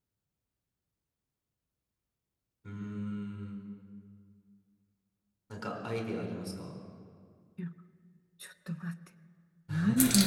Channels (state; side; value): identical; both; correlation 1.00